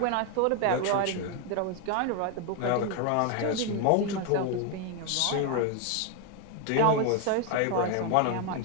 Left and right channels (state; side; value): different; both; correlation 0.01